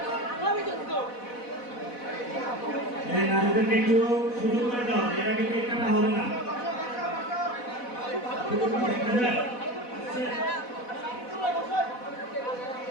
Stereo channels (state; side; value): late; right; 4.1 ms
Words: নারীদেরকে একটু সুযোগ করে দাও, এরা কিন্তু একটা হবে না।